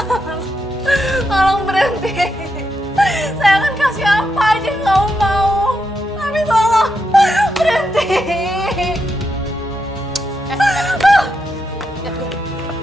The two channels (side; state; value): both; normal; correlation 0.83